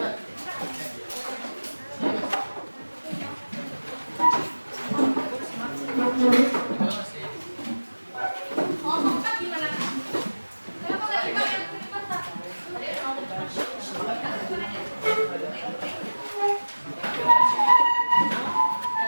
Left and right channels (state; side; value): inverted; both; correlation -1.00